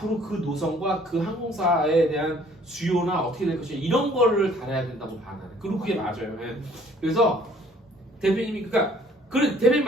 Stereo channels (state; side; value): normal; both; correlation 0.58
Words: 그 노선과 그 항공사에 대한 수요나 어떻게 될 것이냐 이런 거를 다뤄야 된다고 봐 나는. 그리고 그게 맞아요. 그래서 대표님이 그래 대표님